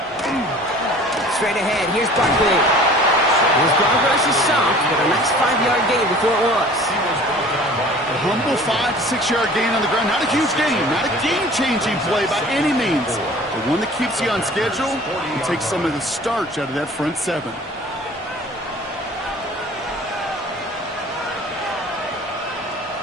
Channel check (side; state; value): both; normal; correlation 0.47